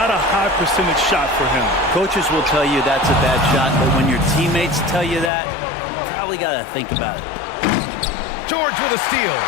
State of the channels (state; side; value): drops out; right; at 5.3 s